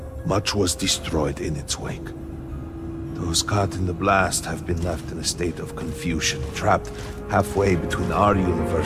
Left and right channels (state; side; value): identical; both; correlation 1.00